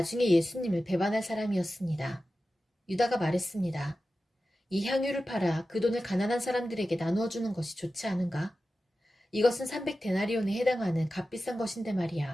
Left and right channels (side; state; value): both; normal; correlation 0.94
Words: 예수님을 배반할 사람이었습니다. 유다가 말했습니다. 이 향유를 팔아 그 돈을 가난한 사람들에게 나누어 주는 것이 좋지 않은가? 이것은 300데나리온에 해당하는 값비싼 것인데